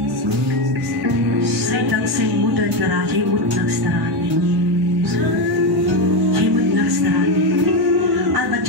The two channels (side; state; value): both; normal; correlation 0.11